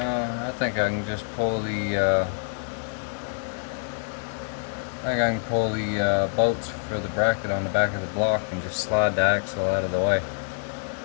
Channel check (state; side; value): silent; right; digital silence